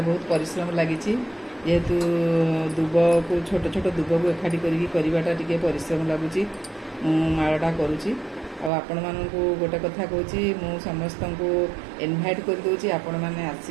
बहुत परिश्रम लगी जेहेतु दुब को छोट छोट दुब को एकाठी करवाटा टे परिश्रम लगुच मालाटा करुच्ची। आपण मानक गोटे कथा कहूँ समस्त को इनभाइट कर दूसरी आपण मैंने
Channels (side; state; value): left; drops out; at 8.7 s